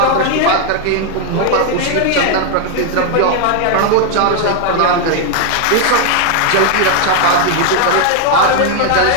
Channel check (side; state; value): both; different; correlation 0.00